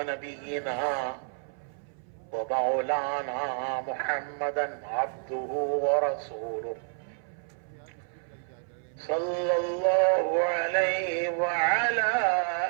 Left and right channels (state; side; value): silent; left; 58 dB below the other